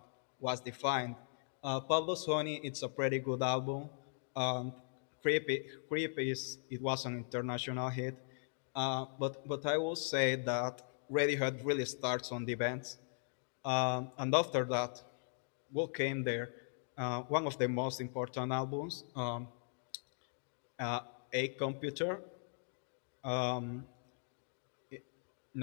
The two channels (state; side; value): silent; right; digital silence